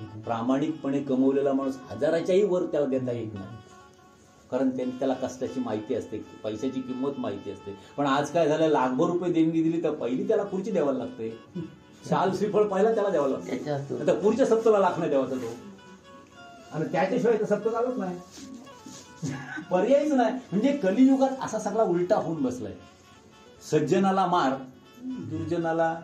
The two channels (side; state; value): both; identical; correlation 1.00